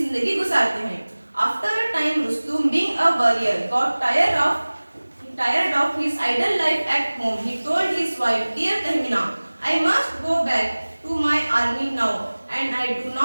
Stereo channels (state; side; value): inverted; both; correlation -1.00